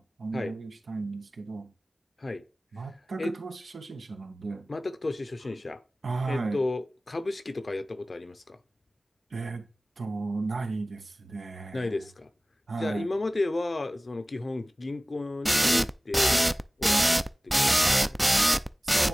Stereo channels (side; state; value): both; normal; correlation 0.98